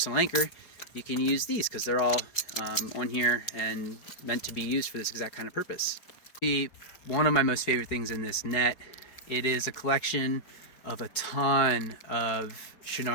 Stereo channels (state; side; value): late; right; 4.8 ms